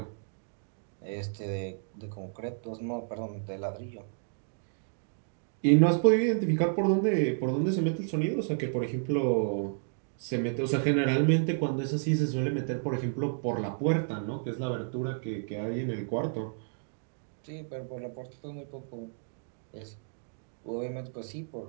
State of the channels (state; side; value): silent; left; digital silence